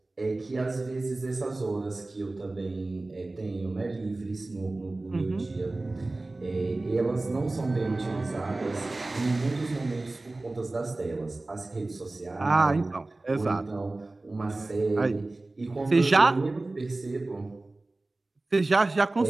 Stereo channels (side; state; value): left; quieter; 3.0 dB